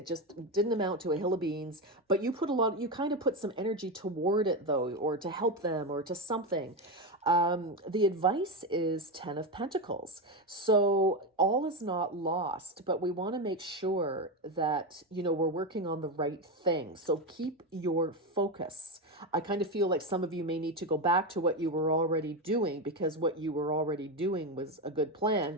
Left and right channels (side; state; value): both; normal; correlation 0.13